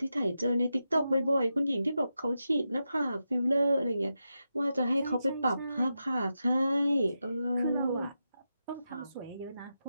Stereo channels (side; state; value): both; inverted; correlation -0.88